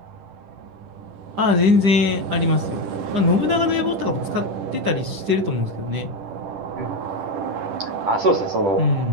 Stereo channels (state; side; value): late; left; 10 ms